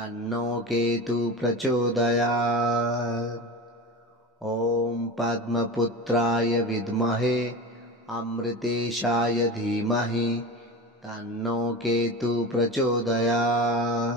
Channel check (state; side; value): normal; both; correlation 0.28